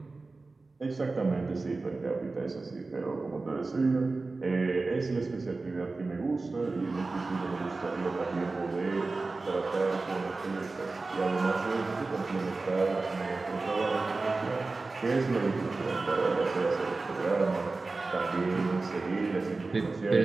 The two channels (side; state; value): left; quieter; 3.6 dB